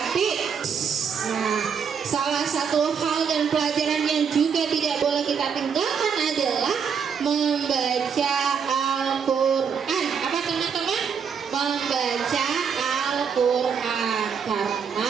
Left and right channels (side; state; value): left; quieter; 6.7 dB